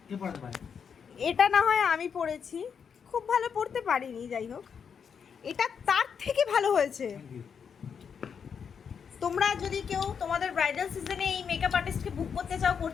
কে পড়াতে পারে? এটা না হয় আমি পড়েছি, খুব ভালো পড়তে পারিনি, যাই হোক এটা তার থেকে ভালো হয়েছে। তোমরা যদি কেউ তোমাদের ব্রাইডাল সিজনে এই মেকআপ আর্টিস্টকে বুক করতে চাও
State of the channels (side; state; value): right; quieter; 6.8 dB